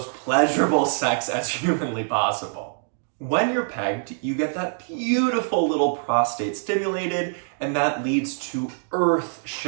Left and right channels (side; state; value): left; silent; digital silence